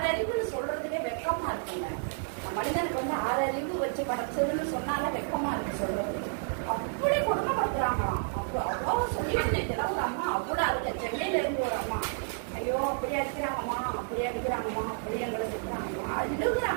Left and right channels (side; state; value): left; silent; digital silence